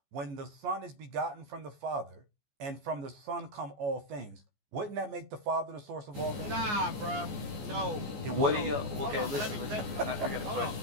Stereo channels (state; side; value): late; left; 14 ms